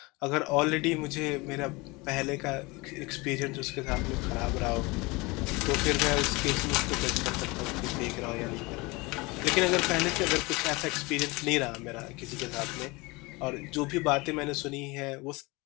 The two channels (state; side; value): quieter; right; 24.7 dB